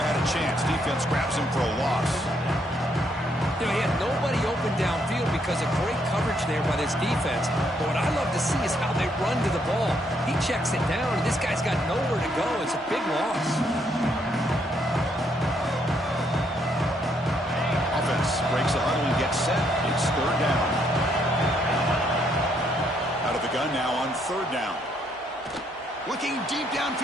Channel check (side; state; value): both; normal; correlation 0.72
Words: a chance. Defense grabs him for a loss. You know, he had nobody open downfield because of great coverage there by this defense. But what I love to see is how they run to the ball. He checks it down, and this guy's got nowhere to go. It's a big loss. Offense breaks a huddle and gets set. It's third down. Out of the gun now on third down. Looking deep